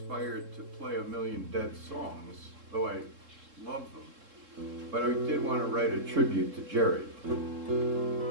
to play a million Dead songs, though I love them. But I did want to write a tribute to Jerry.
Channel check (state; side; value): late; left; 3.7 ms